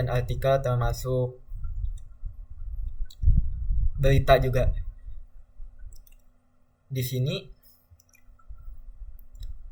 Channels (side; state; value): both; identical; correlation 1.00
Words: artikel, termasuk berita juga. Di sini